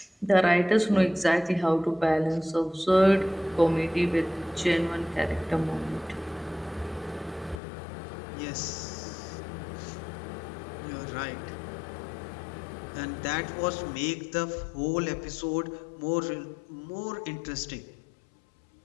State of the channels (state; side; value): drops out; right; at 7.6 s